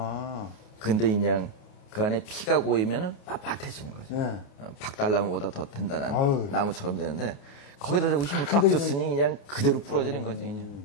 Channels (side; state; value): right; late; 28 ms